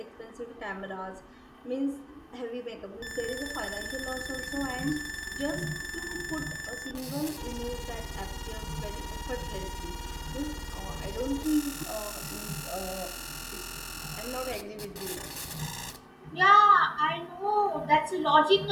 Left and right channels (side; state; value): both; identical; correlation 1.00